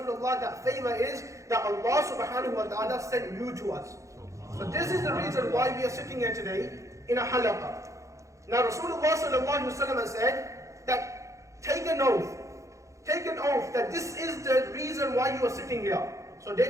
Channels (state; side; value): late; left; 0.15 ms